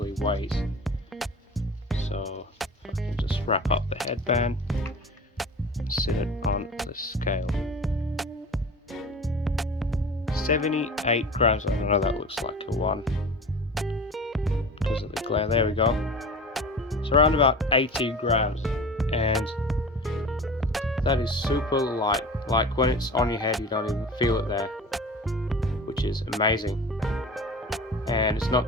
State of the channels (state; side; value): normal; both; correlation 0.36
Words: weighs. So I can just wrap up the headband and sit it on the scale. 78 grams. I don't know, that looks like a 1 because of the glare. There we go. It's around about 80 grams, and that is super light. Like when it's on your head, you don't even feel it there, which is amazing. And it's not